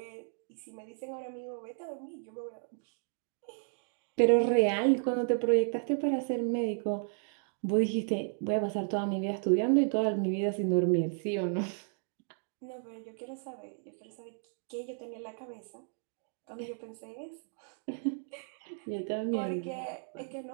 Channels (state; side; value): silent; left; 55 dB below the other